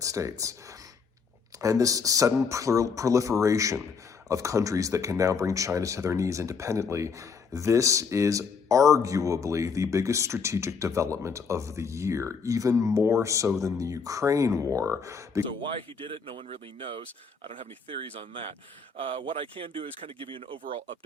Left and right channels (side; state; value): right; quieter; 5.4 dB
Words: States. And this sudden proliferation of countries that can now bring China to their knees independently, this is arguably the biggest strategic development of the year, even more so than the Ukraine war. So why he did it, no one really knows. I don't have any theories on that. What I can do is kind of give you an overall